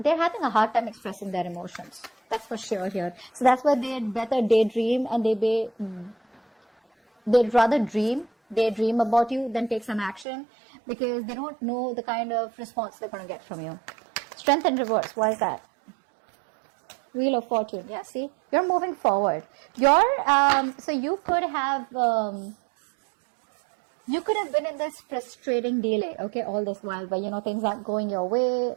having a hard time expressing their emotions. That's for sure here. So that's why they'd better daydream, and they'd rather daydream about you than take some action, because they don't know the kind of response they're going to get from you. Strength in reverse. Why is that? Wheel of Fortune. Yeah, see, you're moving forward. So you could have been in this frustrating delay, okay, all this while, but things aren't going your way,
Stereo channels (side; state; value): left; drops out; at 10.2 s